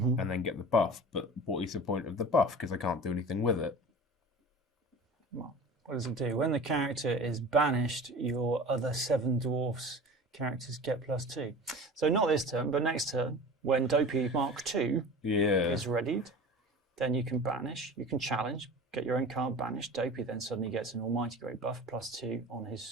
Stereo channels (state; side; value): normal; both; correlation 0.37